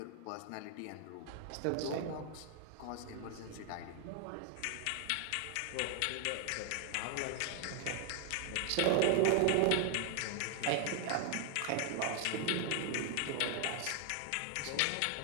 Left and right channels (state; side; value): different; both; correlation 0.00